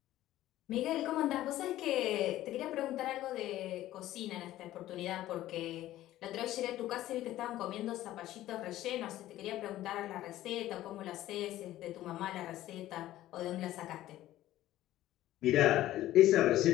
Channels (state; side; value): quieter; right; 14.5 dB